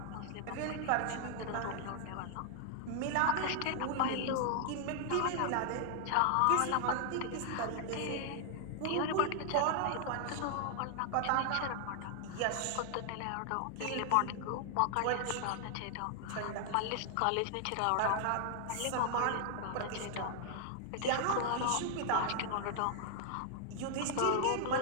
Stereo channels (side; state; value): both; different; correlation 0.00